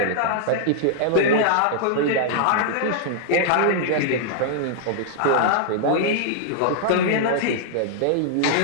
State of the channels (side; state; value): both; different; correlation 0.00